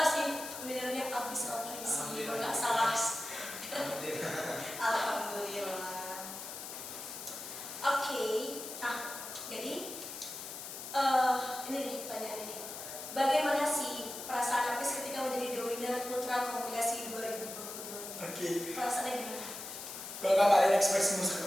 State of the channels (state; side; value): noise; left; hiss, 9 dB below the sound